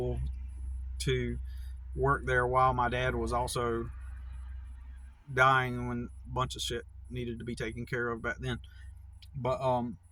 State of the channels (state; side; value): identical; both; correlation 1.00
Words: to work there while my dad was also dying, when a bunch of shit needed to be taken care of back then. But